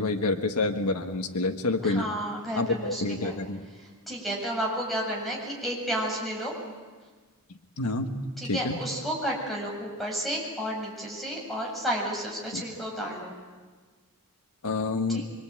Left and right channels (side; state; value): both; normal; correlation 0.20